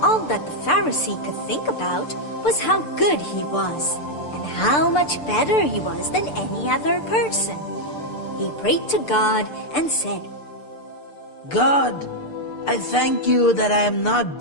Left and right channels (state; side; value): late; right; 6.8 ms